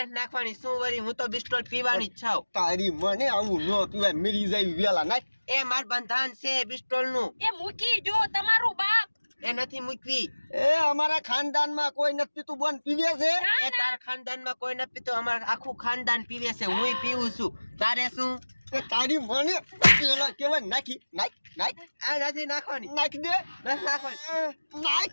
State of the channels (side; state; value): both; inverted; correlation -1.00